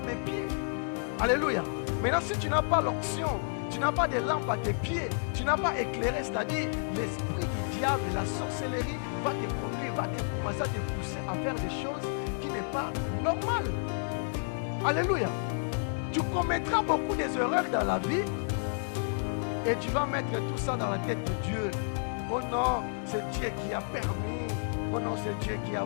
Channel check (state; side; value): silent; right; digital silence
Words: pieds. Alléluia. Maintenant, si tu n'as pas l'option, tu n'as pas de lampe à tes pieds, tu n'as pas éclairé, c'est-à-dire l'esprit du diable, la sorcellerie va te conduire, va te commencer à te pousser à faire des choses qui n'est pas normales. Alléluia. Tu commettras beaucoup d'erreurs dans la vie et tu vas mettre tout ça dans la tête de Dieu. Oh non, c'est Dieu qui a permis. Oh non, c'est Dieu qui a